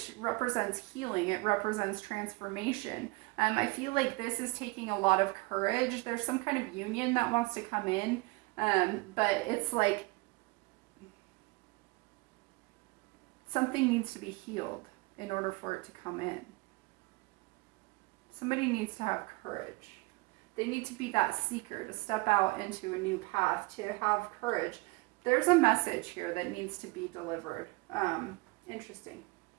represents healing. It represents transformation. I feel like this is taking a lot of courage. There's some kind of union that wants to come in, but it's like something needs to be healed in order for it to come in. Somebody needs to have courage. They need to be that seeker, to step out into a new path, to have courage. There's a message here that needs to be delivered. Interesting.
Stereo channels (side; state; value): left; quieter; 24.9 dB